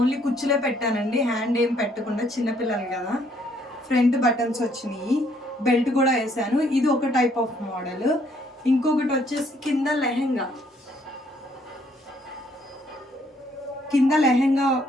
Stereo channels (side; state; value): both; normal; correlation 0.67